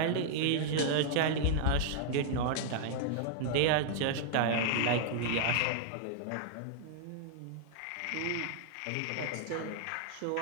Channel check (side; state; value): both; different; correlation 0.00